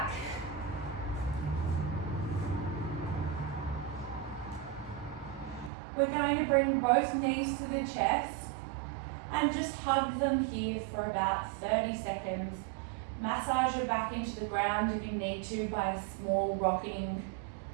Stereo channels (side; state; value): left; drops out; at 5.7 s